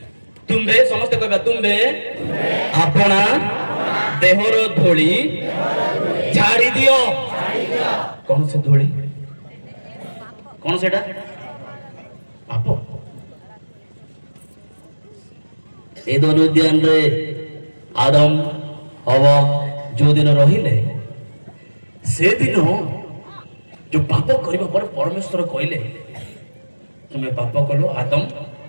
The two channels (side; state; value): both; inverted; correlation -1.00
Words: तुम्हे समस्त कहबा तुम्हे अपना देहर धूली झाड़ी दियो कौन से धूली कौन सेटा पाप ଏଦନ ଉଦ୍ୟାନରେ ଆଦମ ହବା ଯୋଉଦିନ ରହିଲେ ସେଦିନ ଯୋଉ ପାପ କରିବା ପରେ ପରମେଶ୍ୱର କହିଲେ ତୁମେ ପାପ କଲ ଆଦମ